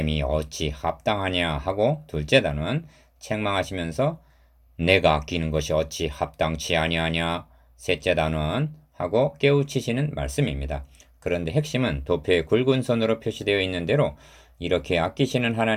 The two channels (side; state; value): both; identical; correlation 1.00